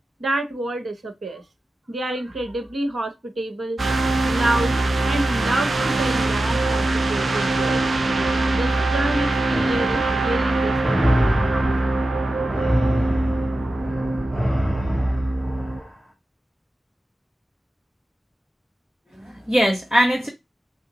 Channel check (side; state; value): both; normal; correlation 0.93